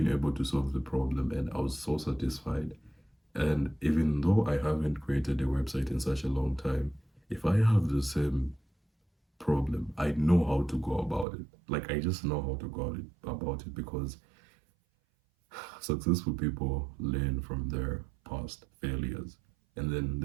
able to solve the problem and I was so satisfied. And even though I haven't created a website in such a long time, if I have the same problem, I know how to go about it. Like I just know how to go about it because successful people learn from their past failures. And then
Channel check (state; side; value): drops out; left; at 11.2 s